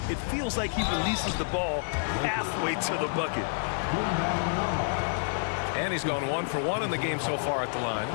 it feels like he releases the ball halfway to the bucket. And he's gone 1 for 1 in the game so far at the line.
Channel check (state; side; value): silent; right; digital silence